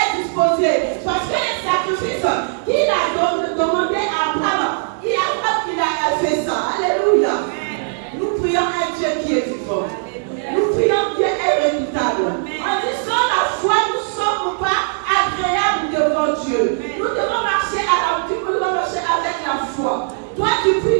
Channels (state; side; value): silent; left; 67 dB below the other